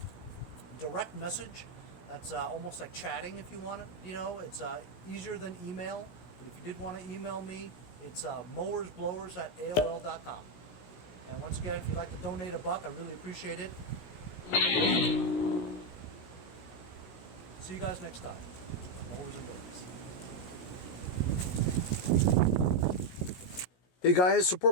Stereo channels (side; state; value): right; late; 17 ms